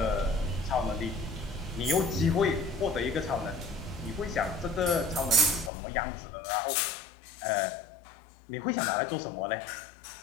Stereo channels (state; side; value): drops out; right; at 5.7 s